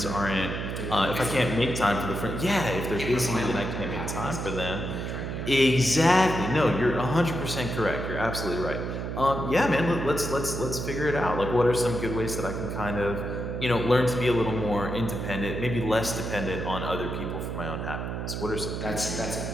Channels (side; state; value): right; noise; hum, 4 dB below the sound